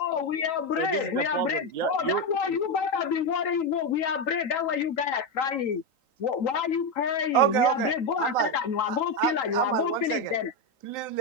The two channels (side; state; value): right; late; 3.9 ms